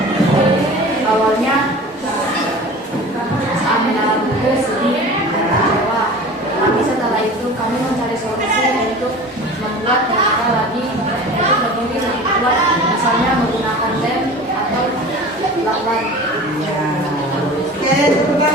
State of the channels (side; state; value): both; normal; correlation 0.38